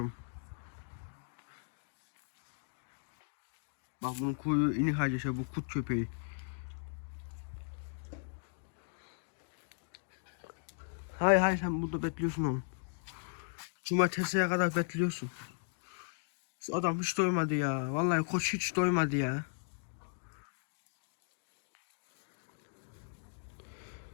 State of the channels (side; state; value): right; silent; digital silence